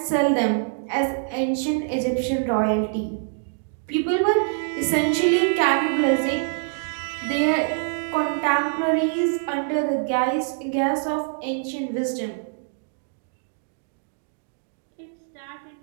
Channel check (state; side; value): silent; left; 61 dB below the other